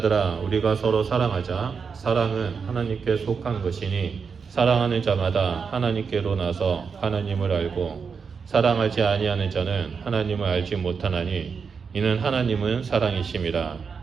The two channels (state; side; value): quieter; left; 5.8 dB